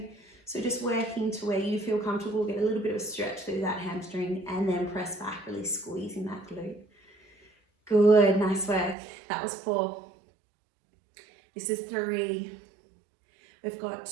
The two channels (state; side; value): drops out; left; at 9.0 s